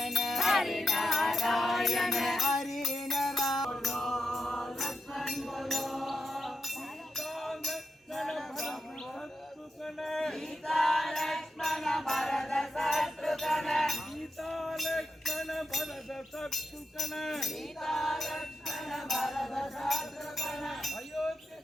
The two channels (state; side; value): normal; both; correlation 0.87